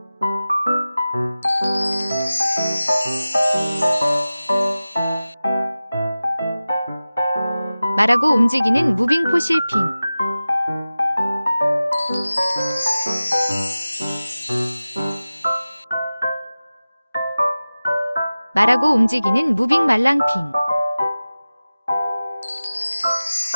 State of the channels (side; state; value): both; inverted; correlation -0.97